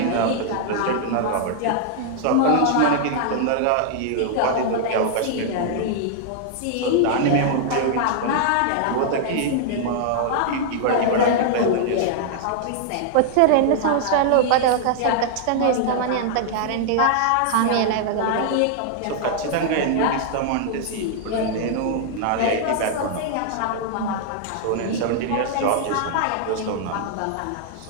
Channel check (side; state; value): both; different; correlation -0.01